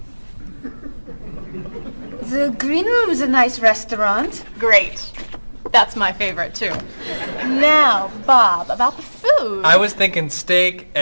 The Green Room's a nice restaurant. Great. That's my favorite, too. Now, Bob, about the food. I was thinking steak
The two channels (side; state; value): both; inverted; correlation -1.00